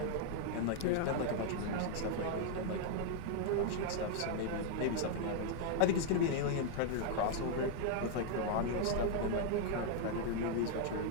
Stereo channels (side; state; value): both; different; correlation 0.00